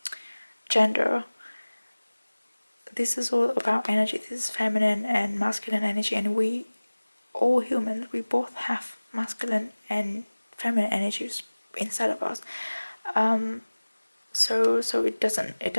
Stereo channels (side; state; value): both; inverted; correlation -1.00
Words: gender. This is all about energy. This is feminine and masculine energy, and we all humans, we both have masculine and feminine energies inside of us. So it